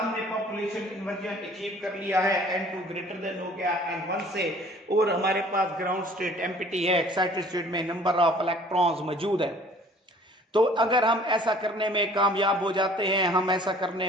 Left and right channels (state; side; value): normal; both; correlation 0.52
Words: पॉपुलेशन इन्वर्जन अचीव कर लिया है, N2 ग्रेटर देन हो गया N1 से, और हमारे पास ग्राउंड स्टेट एम्प्टी है, एक्साइटेड स्टेट में नंबर ऑफ इलेक्ट्रॉन्स मौजूद है। तो अगर हम ऐसा करने में कामयाब हो जाते हैं, हम ऐसा